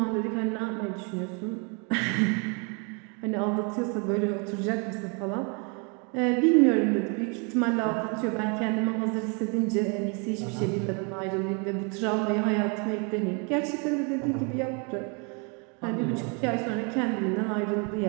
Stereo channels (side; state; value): left; quieter; 34.6 dB